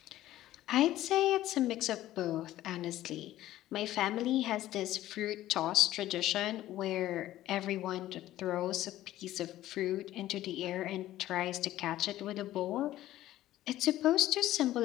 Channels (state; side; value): quieter; right; 14.4 dB